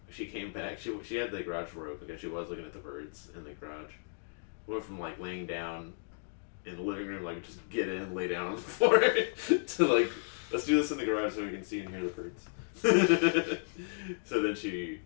she came back, she had the garage door open because she was looking at the birds in the garage. Went from, like, laying down in the living room, like, just get in, lay down on the floor, to, like, let's do this in the garage so we can see and hear the birds. So then she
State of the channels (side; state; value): right; silent; digital silence